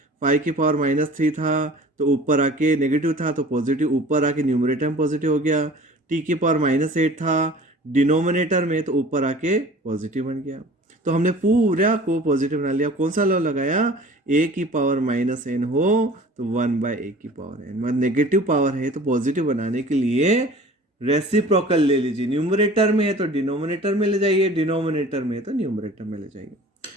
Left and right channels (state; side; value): normal; both; correlation 0.45